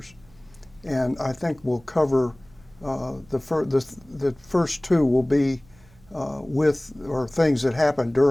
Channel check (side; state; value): right; noise; hum, 28 dB below the sound